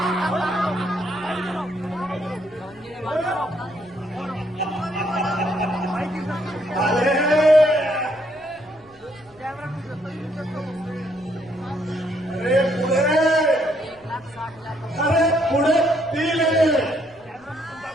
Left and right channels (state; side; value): noise; left; rumble, 28 dB below the sound